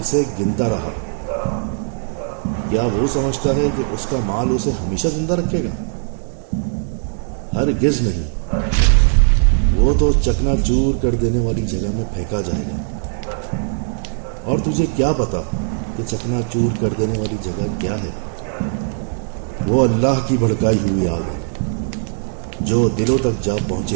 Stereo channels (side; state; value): left; silent; 66 dB below the other